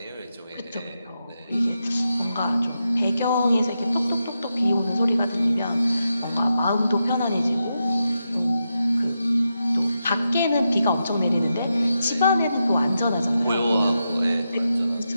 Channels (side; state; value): both; inverted; correlation -0.87